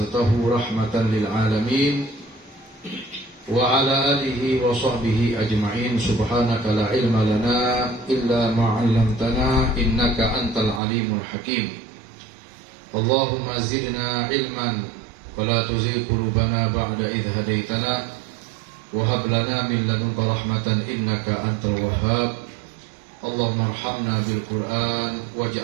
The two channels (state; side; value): drops out; left; at 10.8 s